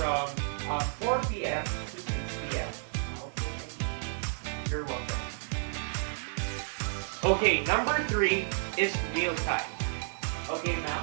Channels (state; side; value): silent; left; digital silence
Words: 4 p.m. to 6 p.m. Okay, thank you. You're welcome. Okay, number 3 is mealtime. Okay,